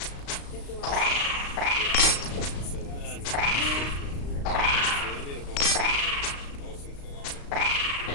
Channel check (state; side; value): late; right; 35 ms